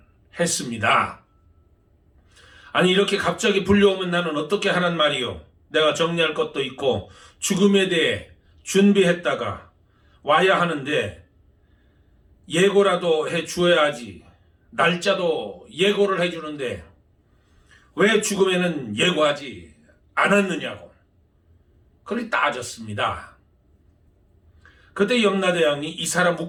했습니다. 아니, 이렇게 갑자기 불려오면 나는 어떻게 하란 말이요? 내가 정리할 것도 있고 죽음에 대해 준비했다가 와야 하는데 예고라도 해 주어야지. 날짜도 예고를 해 주는데 왜 죽음에는 예고하지 않았느냐고 그리 따졌습니다. 그때 염라대왕이 이 사람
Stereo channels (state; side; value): identical; both; correlation 1.00